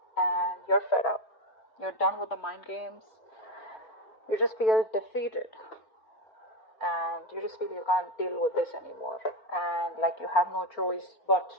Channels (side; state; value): right; late; 4.4 ms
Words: And you're fed up. You're done with the mind games. You just feel defeated. And you just feel you can't deal with this anymore. And like you have no choice but